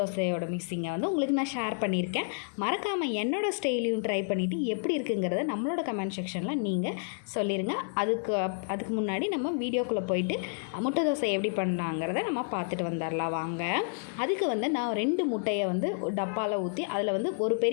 மிக்சிங்கை வந்து உங்களுக்கு நான் ஷேர் பண்ணியிருக்கேன். மறக்காமல் என்னோடய ஸ்டைலையும் ட்ரை பண்ணிவிட்டு எப்படி இருக்குங்கிறத நம்மளோட கமெண்ட் செக்ஷனில் நீங்கள் சொல்லிடுங்க. அதுக்கு முன்னாடி நம்ம வீடியோக்குள்ளே போயிட்டு முட்டை தோசை எப்படி பண்ணலாங்கிறத நம்ம பார்த்துட்டு வந்துடலாம் வாங்க. அதுக்கு வந்து நான் 2 முட்டையை வந்து டப்பாவில் ஊற்றி அதில் வந்து ஒரு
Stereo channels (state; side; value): silent; right; 58 dB below the other